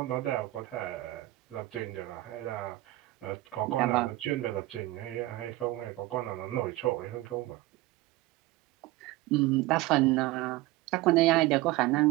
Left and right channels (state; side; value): quieter; left; 18.4 dB